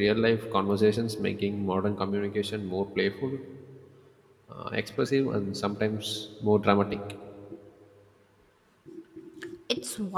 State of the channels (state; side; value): identical; both; correlation 1.00